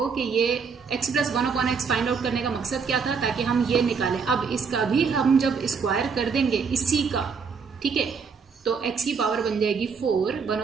कि ये x plus 1/x find out करने का मकसद क्या था, ताकि हम ये निकालें। अब इसका भी हम जब स्क्वायर कर देंगे इसी का, ठीक है, तो x की पावर बन जाएगी 4,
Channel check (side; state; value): left; quieter; 5.6 dB